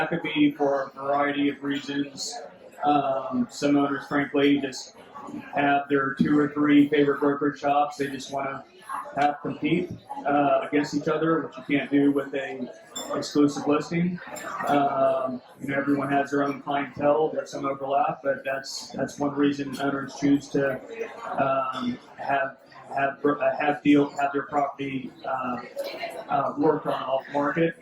could be for a variety of reasons. Some owners, frankly, just have their 2 or 3 favorite brokerage shops. They just want to have compete against each other, which you can't do with a exclusive listing. Everyone has their own clientele. There's some overlap, but that's one reason owners choose to have their property worked on off market.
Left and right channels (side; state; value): both; identical; correlation 1.00